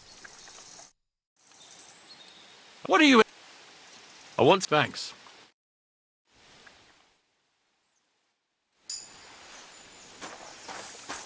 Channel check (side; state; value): both; identical; correlation 1.00